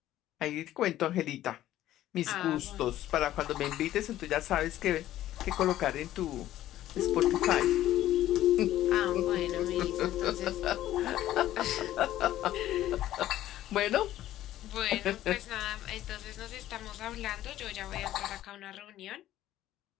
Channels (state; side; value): quieter; right; 13.6 dB